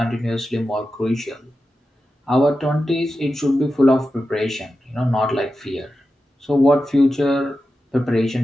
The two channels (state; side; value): normal; both; correlation 0.91